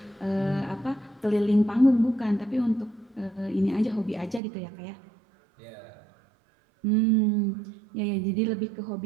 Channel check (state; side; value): drops out; left; at 4.4 s